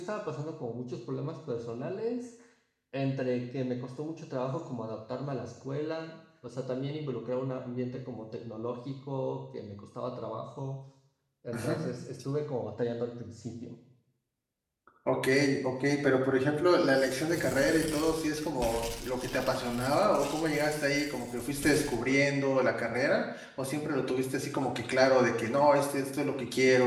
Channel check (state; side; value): identical; both; correlation 1.00